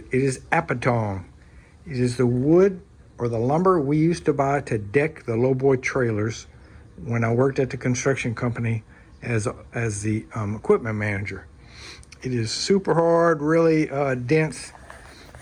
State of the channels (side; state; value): both; identical; correlation 1.00